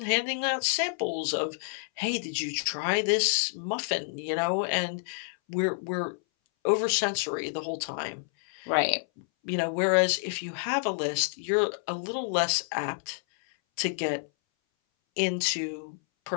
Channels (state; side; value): silent; right; 59 dB below the other